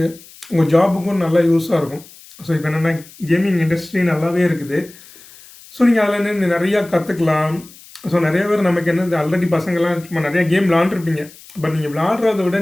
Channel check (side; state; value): left; noise; hiss, 22 dB below the sound